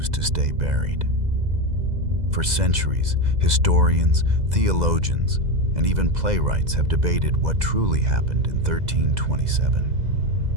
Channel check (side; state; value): left; late; 2.0 ms